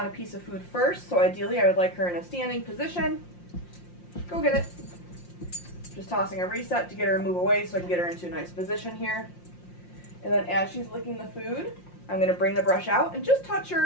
a piece of food first. So ideally I would like her in a standing position. Go get it. Just tossing a reset to get her to move away so I can get her into a nice position here. And then as she's licking the food, I'm going to bring the brush out and just touch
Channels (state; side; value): late; right; 5.7 ms